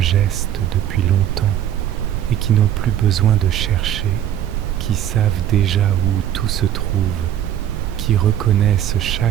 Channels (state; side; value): quieter; left; 10.7 dB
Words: geste depuis longtemps et qui n'ont plus besoin de chercher, qui savent déjà où tout se trouve, qui reconnaissent